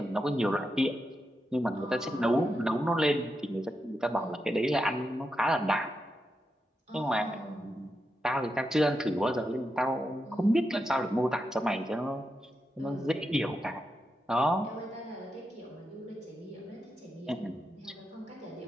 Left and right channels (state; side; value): normal; both; correlation 0.86